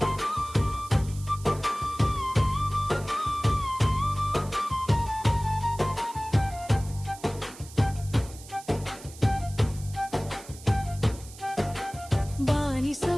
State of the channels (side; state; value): right; noise; hiss, 18 dB below the sound